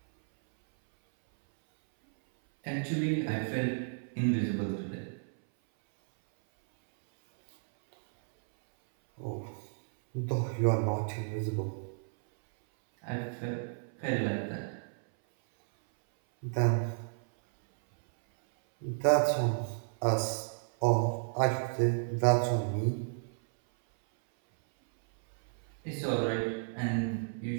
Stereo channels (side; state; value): left; silent; 56 dB below the other